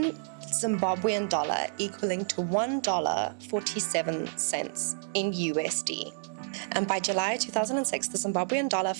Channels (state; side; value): silent; left; digital silence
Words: Zimbabwean dollar equaling to $1.47 in USD. And by July 2006, the Zimbabwean dollar